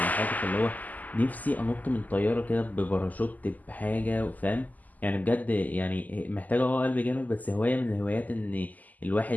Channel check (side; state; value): right; late; 0.080 ms